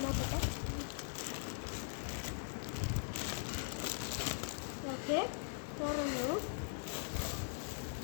നോക്കട്ടെ. ഓക്കെ, തുറന്നു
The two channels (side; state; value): right; silent; digital silence